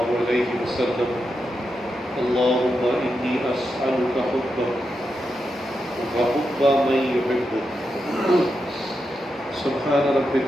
عليه وسلم اللهم إني أسألك حبك وحب من يحبك سبحان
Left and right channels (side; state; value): both; normal; correlation 0.87